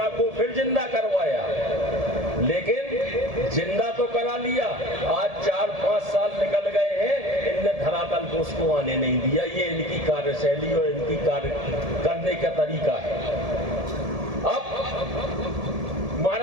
को फिर जिंदा करवाया, लेकिन जिंदा तो करा लिया। आज 4-5 साल निकल गए हैं, इनने धरातल को उसको आने नहीं दिया। ये इनकी कार्यशैली और इनकी कार्य करने का तरीका है। अब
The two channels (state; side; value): late; left; 1.7 ms